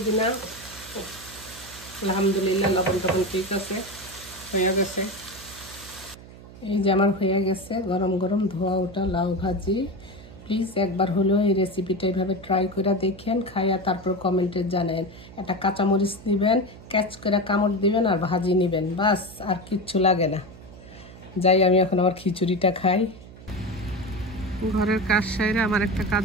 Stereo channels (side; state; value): right; noise; hum, 18 dB below the sound